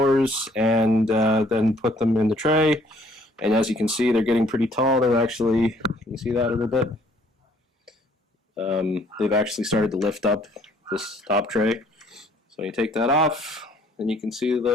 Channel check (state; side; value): normal; both; correlation 0.61